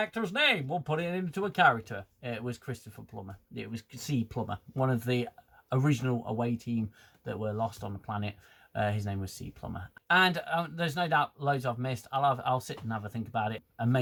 name. We'll put it into a character." It was Christopher Plummer. It was C. Plummer, one of the original away team that were lost on the planet. His name was C. Plummer. And there's no doubt loads I've missed. I'll sit and have a think about it and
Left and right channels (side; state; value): both; identical; correlation 1.00